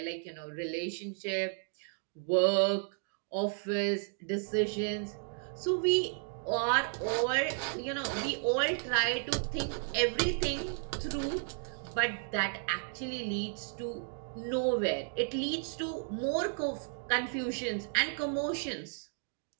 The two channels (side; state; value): left; silent; 55 dB below the other